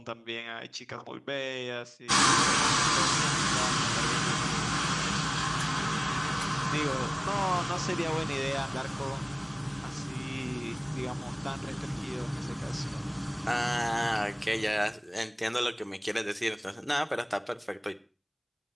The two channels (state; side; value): identical; both; correlation 1.00